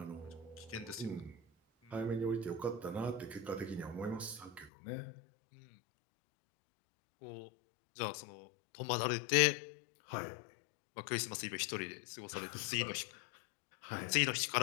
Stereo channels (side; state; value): right; drops out; at 4.7 s